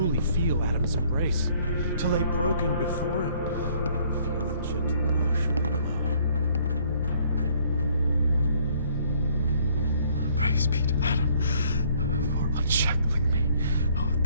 feel Adam's embrace, to lay broken before him, feel the gentle wash of the blood. Praise be to Adam for unshackling me. Oh,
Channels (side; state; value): both; inverted; correlation -0.61